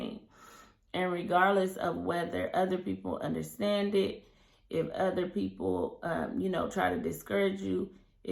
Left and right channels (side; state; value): both; identical; correlation 1.00